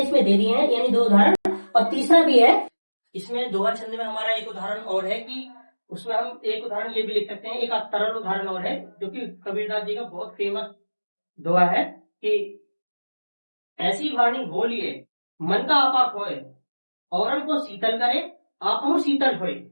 इसमें दे दिए हैं, यानी 2 उदाहरण। और तीसरा भी है इसमें दोहा छंद में हमारा एक उदाहरण और है कि उसमें हम एक उदाहरण ये भी लिख सकते हैं, एक तरल उदाहरण और है जो कि कबीरदास जी का बहुत फेमस दोहा है कि ऐसी वाणी बोलिए मन का आपा खोए, औरन को शीतल करे आप हम शीतल होए।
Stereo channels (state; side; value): inverted; both; correlation -1.00